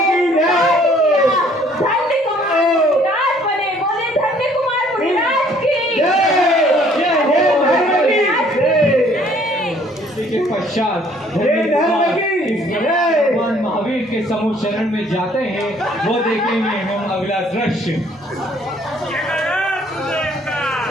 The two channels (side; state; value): both; normal; correlation 0.60